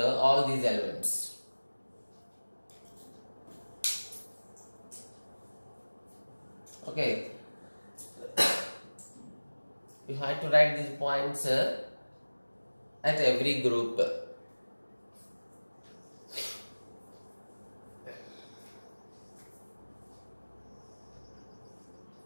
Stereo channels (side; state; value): both; inverted; correlation -1.00